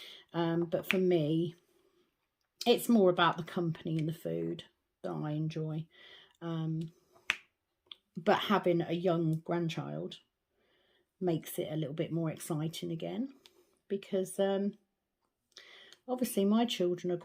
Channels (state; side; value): identical; both; correlation 1.00